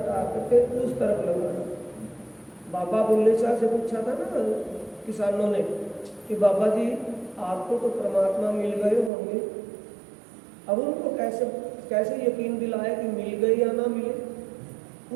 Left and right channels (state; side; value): drops out; left; at 9.1 s